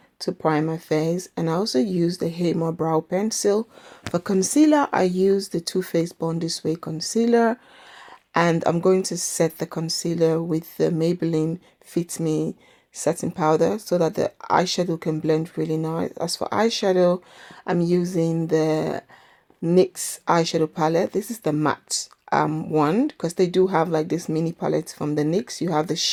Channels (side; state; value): both; identical; correlation 1.00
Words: to prime my face, and I also use the Hema Brow Pencil. For concealer, I use the Too Faced Born This Way concealer, and I'm going to set the concealer with the Maybelline Fit Me setting powder so that the eyeshadow can blend really nice. As for eyeshadow, I'm using the NYX eyeshadow palette. This is the matte one, because they do have like this mini palette from the NYX. You have the